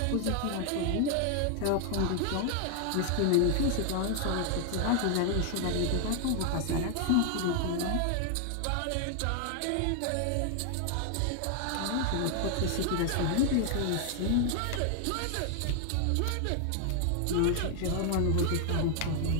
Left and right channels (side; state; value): both; different; correlation 0.00